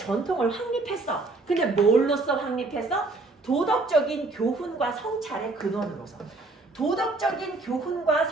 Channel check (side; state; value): left; quieter; 3.4 dB